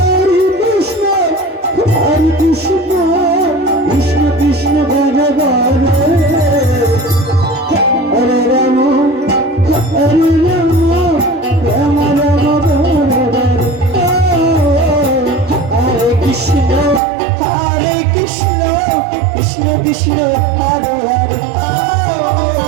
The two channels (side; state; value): left; drops out; at 17.0 s